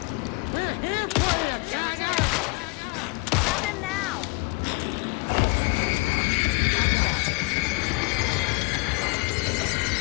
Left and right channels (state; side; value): quieter; right; 28.1 dB